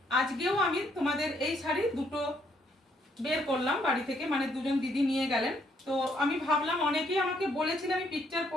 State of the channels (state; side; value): normal; both; correlation 0.70